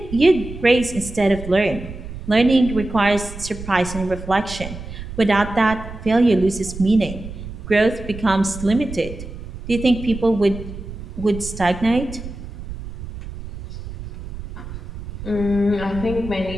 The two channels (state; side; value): noise; right; rumble, 11 dB below the sound